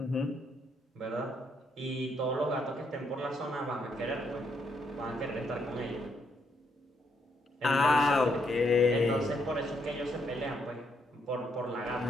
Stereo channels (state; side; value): normal; both; correlation 0.75